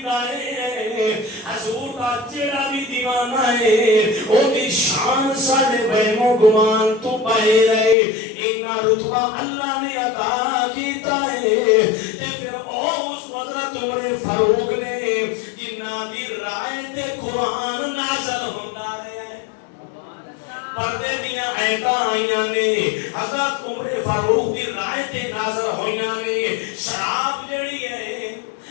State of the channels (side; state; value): right; drops out; at 8.0 s